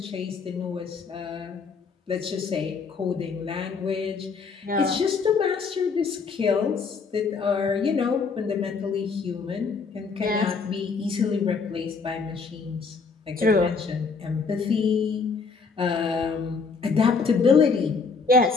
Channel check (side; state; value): right; quieter; 4.9 dB